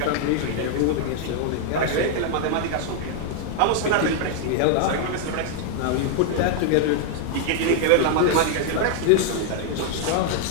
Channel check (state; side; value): different; both; correlation 0.00